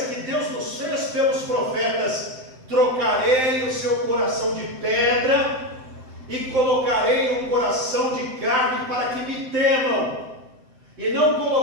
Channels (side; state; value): left; late; 7.8 ms